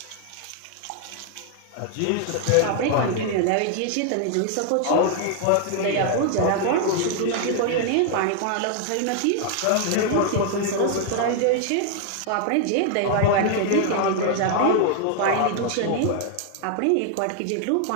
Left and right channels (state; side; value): different; both; correlation 0.00